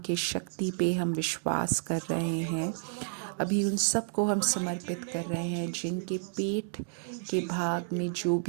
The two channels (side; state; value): left; silent; digital silence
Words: शक्ति पे हम विश्वास कर रहे हैं। अभी उन सब को हम समर्पित कर रहे हैं जिनके पेट के भाग में जो